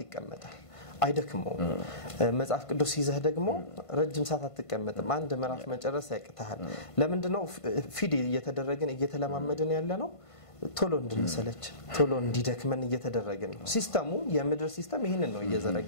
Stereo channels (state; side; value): late; right; 1.5 ms